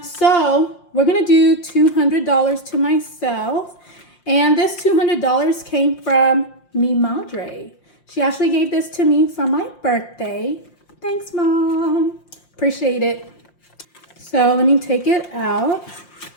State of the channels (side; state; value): right; late; 5.7 ms